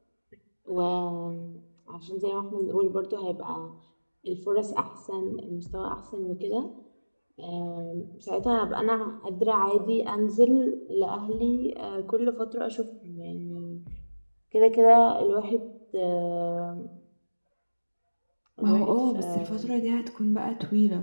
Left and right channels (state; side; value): inverted; both; correlation -1.00